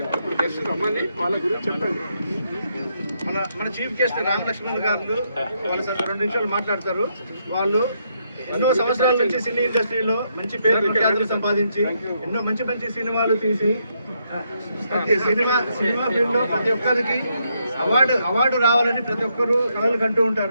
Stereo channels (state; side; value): inverted; both; correlation -0.77